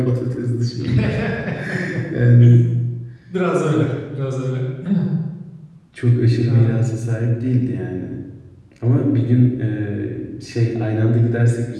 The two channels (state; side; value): identical; both; correlation 1.00